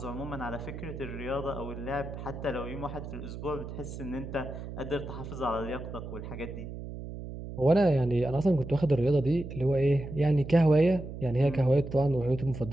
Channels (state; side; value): noise; right; hum, 9 dB below the sound